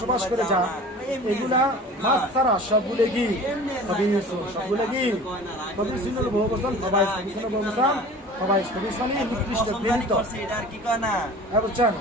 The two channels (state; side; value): normal; both; correlation 0.41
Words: করে যা এগুলা মাছ ছাড়া সবগুলো কি সবগুলো কি কবির বহু বছর সবাই বহু বছর